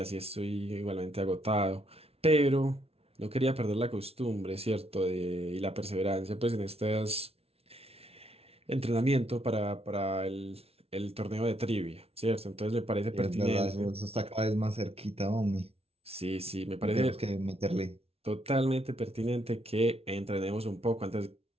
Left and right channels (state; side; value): late; left; 0.29 ms